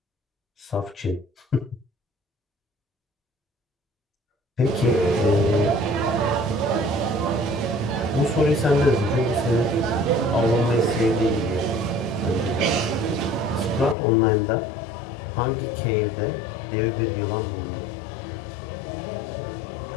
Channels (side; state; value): right; drops out; at 14.0 s